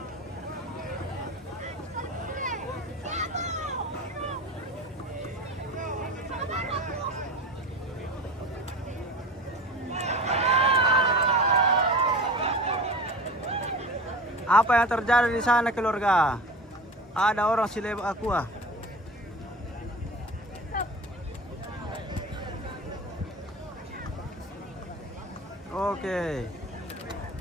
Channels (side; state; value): both; normal; correlation 0.34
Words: Apa yang terjadi di sana keluarga? Ada orang silep aqua. Oke.